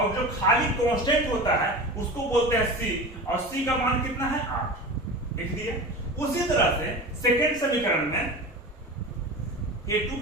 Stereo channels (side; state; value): both; normal; correlation 0.31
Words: जो खाली कांस्टेंट होता है उसको बोलते हैं c, और c का मान कितना है 8। लिख दिए। उसी तरह से सेकेंड समीकरण में A2